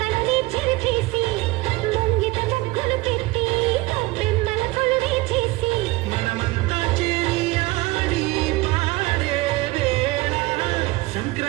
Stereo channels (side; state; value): left; quieter; 21.0 dB